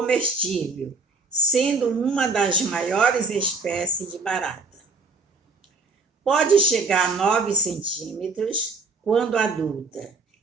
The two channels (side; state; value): left; quieter; 4.0 dB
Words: sendo uma das maiores espécies de barata. Pode chegar a 9 centímetros quando adulta